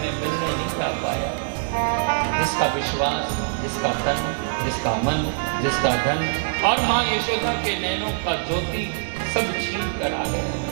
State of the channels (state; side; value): silent; left; digital silence